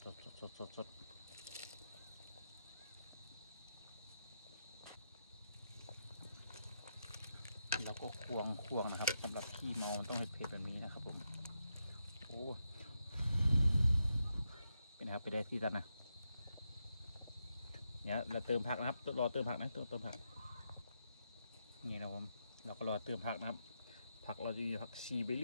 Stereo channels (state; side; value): inverted; both; correlation -0.84